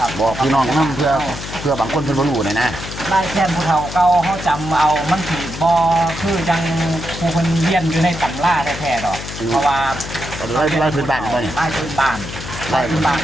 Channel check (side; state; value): left; noise; hum, 10 dB below the sound